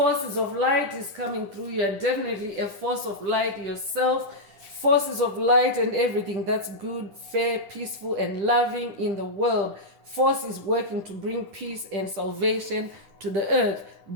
of light is coming through. You're definitely a force of light yourself. Forces of light and everything that's good, fair, peaceful, and loving in the world. Force is working to bring peace and salvation to the earth.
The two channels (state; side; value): late; left; 10 ms